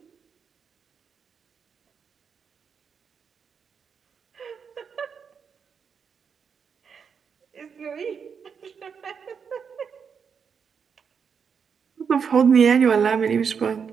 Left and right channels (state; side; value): quieter; left; 6.5 dB